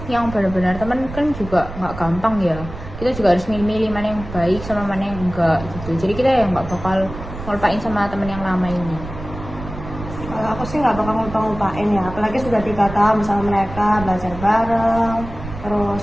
yang benar-benar temen kan juga nggak gampang ya. Kita juga harus milih-milih mana yang baik sama mana yang enggak gitu. Jadi kita yang nggak bakal ngelupain sama temen yang lama ini. Kalau aku sih nggak bakal ngupain ya, apalagi sudah 3 tahun bersama mereka, belajar bareng, terus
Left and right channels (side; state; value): right; noise; rumble, 11 dB below the sound